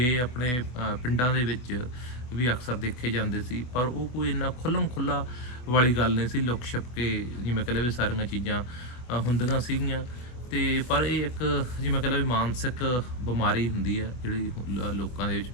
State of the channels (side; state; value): right; late; 24 ms